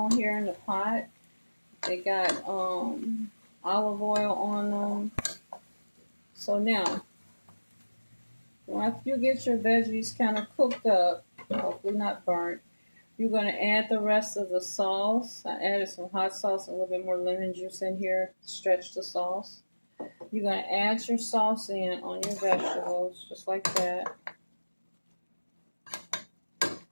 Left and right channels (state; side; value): inverted; both; correlation -1.00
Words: here in the pot. They got olive oil on them. So now, once you get your veggies kind of cooked up, hopefully not burnt, you're going to add the rest of the sauce. I added some hot sauce, and a little bit more lemon juice in here to stretch the sauce. You're going to add your sauce in on your vegetables, just like that.